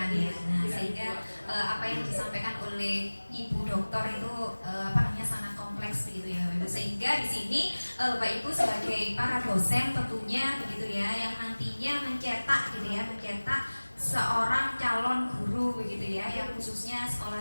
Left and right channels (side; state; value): both; inverted; correlation -1.00